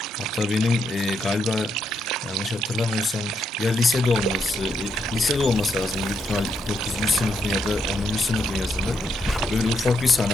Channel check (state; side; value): normal; both; correlation 0.79